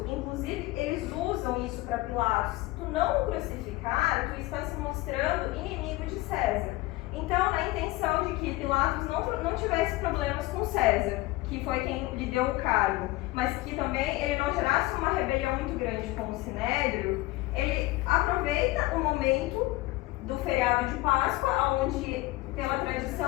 inclusive eles usam isso para Pilatos, se tu não o crucificar, tu está se mostrando inimigo de César. Então, na intenção de que Pilatos não tivesse problemas com César, que foi quem lhe deu o cargo, mas que também ele não gerasse uma rebelião muito grande com o Sinédrio, ele aproveita o momento do feriado de Páscoa, onde, pela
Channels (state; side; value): quieter; right; 19.4 dB